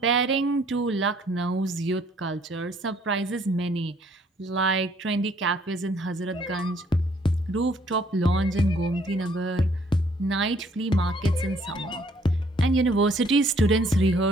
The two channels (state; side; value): normal; both; correlation 0.63